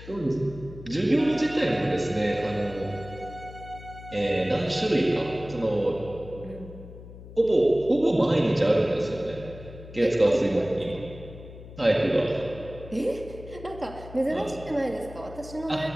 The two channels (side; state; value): left; noise; hum, 15 dB below the sound